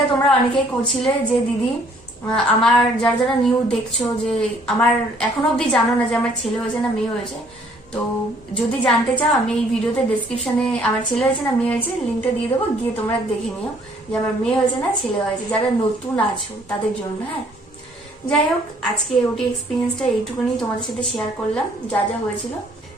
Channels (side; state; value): both; normal; correlation 0.61